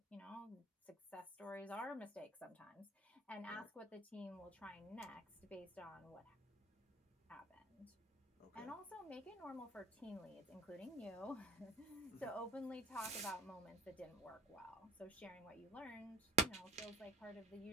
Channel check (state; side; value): normal; both; correlation 0.43